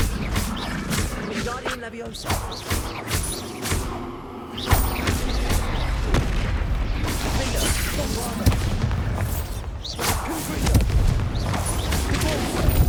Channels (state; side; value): identical; both; correlation 1.00